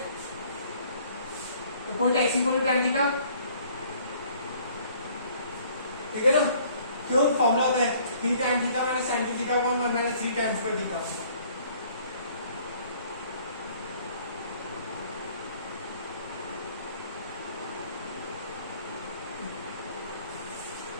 तो put x equal to tan theta. ठीक है ना? क्यों फॉर्मूला होता है 3 tan theta minus tan theta 1 minus 3 tan square theta.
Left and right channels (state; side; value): inverted; both; correlation -0.58